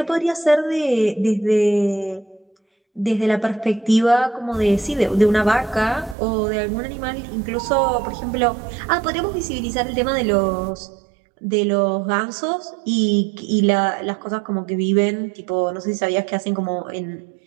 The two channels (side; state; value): left; drops out; at 6.2 s